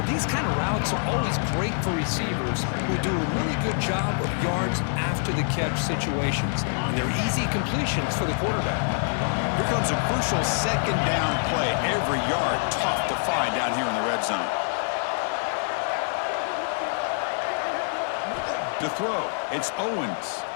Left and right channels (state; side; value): silent; right; 59 dB below the other